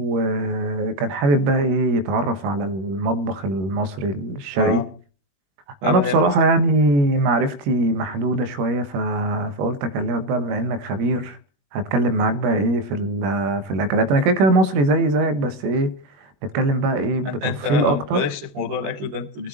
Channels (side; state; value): left; late; 21 ms